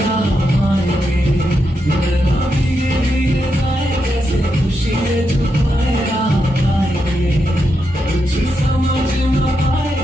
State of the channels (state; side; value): normal; both; correlation 0.84